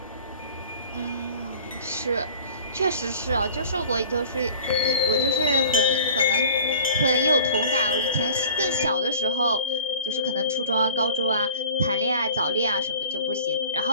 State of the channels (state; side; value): inverted; both; correlation -0.44